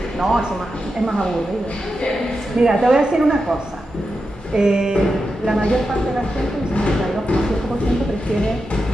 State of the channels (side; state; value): both; normal; correlation 0.89